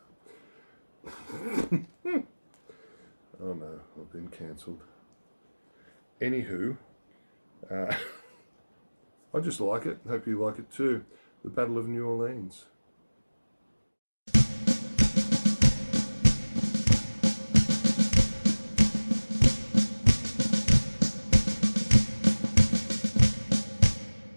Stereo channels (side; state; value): both; inverted; correlation -1.00